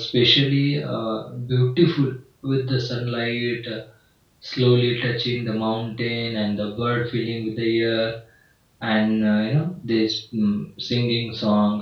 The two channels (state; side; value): identical; both; correlation 1.00